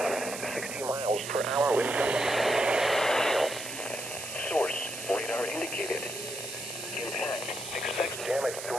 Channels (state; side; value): noise; right; hiss, 8 dB below the sound